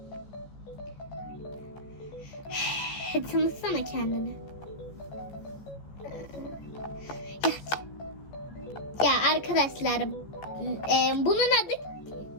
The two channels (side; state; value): right; late; 15 ms